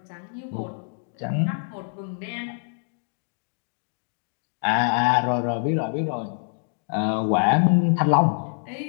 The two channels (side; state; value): right; silent; digital silence